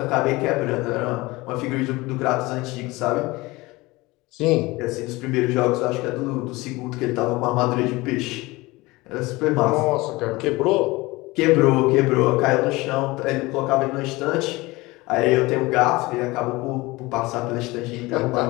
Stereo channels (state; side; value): quieter; right; 21.7 dB